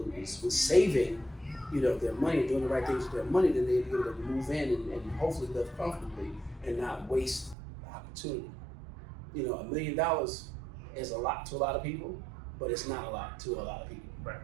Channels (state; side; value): drops out; left; at 7.6 s